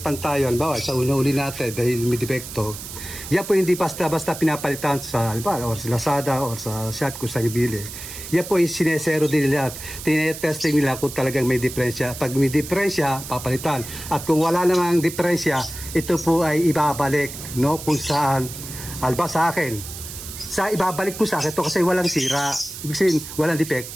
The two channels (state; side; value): noise; right; hiss, 11 dB below the sound